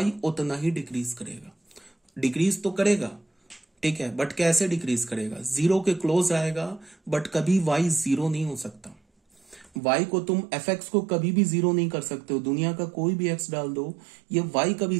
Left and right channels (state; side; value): drops out; left; at 9.8 s